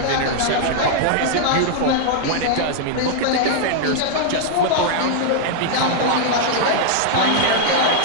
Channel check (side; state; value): both; different; correlation -0.01